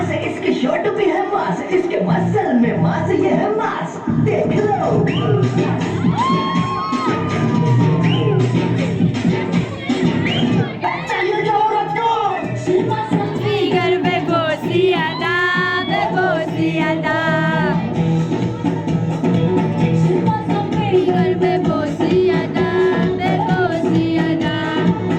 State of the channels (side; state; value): both; identical; correlation 1.00